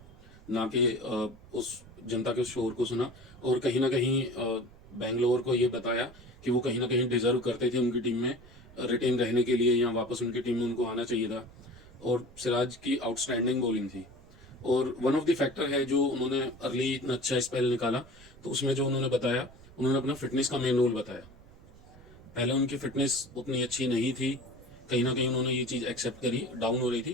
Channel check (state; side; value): noise; right; rumble, 22 dB below the sound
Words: ना कि उस जनता के शोर को सुना। और कहीं ना कहीं बेंगलोर को ये बताया कि वो कहीं ना कहीं डिजर्व करते थे उनकी टीम में रिटेन रहने के लिए, या वापस उनकी टीम में उनको आना चाहिए था। और सिराज की आउटस्टैंडिंग बॉलिंग थी, और वन ऑफ द फैक्टर है जो उन्होंने अर्ली इतना अच्छा स्पेल निकाला। तो उसमें जो उन्होंने बताया, उन्होंने अपना फिटनेस का मेन रोल बताया। पहले उनकी फिटनेस उतनी अच्छी नहीं थी, कहीं ना कहीं उन्होंने ये चीज़ एक्सेप्ट करी, डाउन हो रही